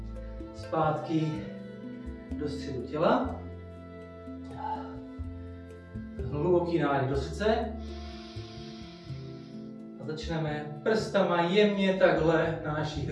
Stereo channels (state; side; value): identical; both; correlation 1.00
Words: Zpátky do středu těla. Hluboký nádech do srdce. A začneme prstama jemně takhle na naši